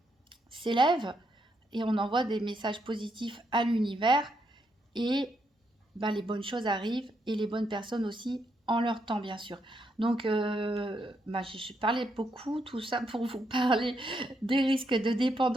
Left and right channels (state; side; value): normal; both; correlation 0.78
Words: s'élèvent et on envoie des messages positifs à l'univers et bah, les bonnes choses arrivent et les bonnes personnes aussi en leur temps, bien sûr. Donc, bah, je parlais beaucoup, tout ça pour vous parler des risques de